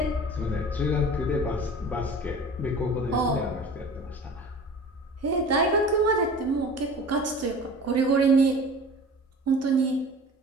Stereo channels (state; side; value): normal; both; correlation 0.40